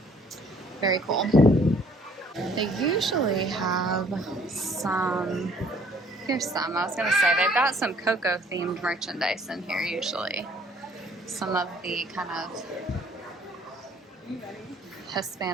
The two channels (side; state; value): both; normal; correlation 0.59